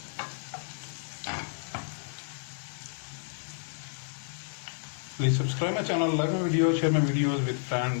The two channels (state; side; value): silent; right; digital silence